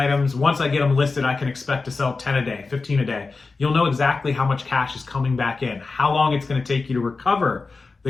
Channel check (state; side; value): quieter; right; 4.0 dB